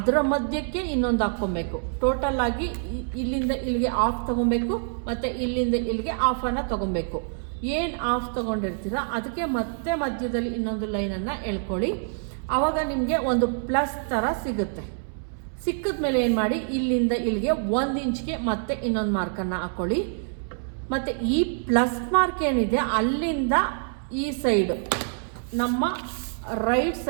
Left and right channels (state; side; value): silent; left; 61 dB below the other